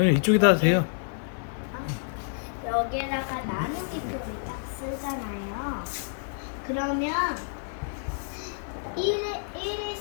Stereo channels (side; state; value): right; silent; digital silence